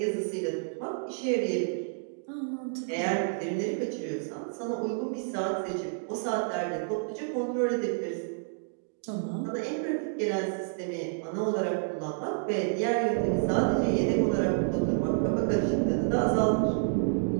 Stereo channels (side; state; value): left; silent; digital silence